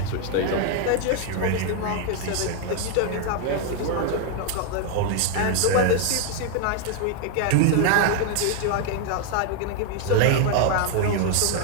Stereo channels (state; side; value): different; both; correlation 0.00